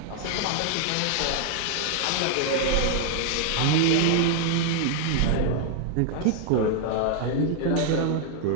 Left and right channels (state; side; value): different; both; correlation 0.00